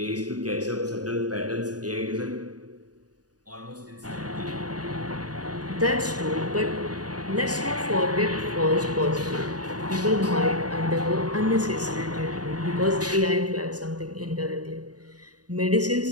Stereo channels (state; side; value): late; left; 0.68 ms